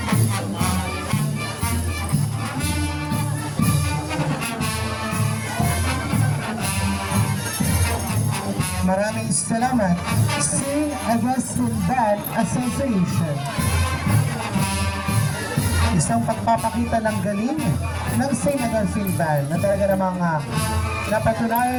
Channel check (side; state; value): both; identical; correlation 1.00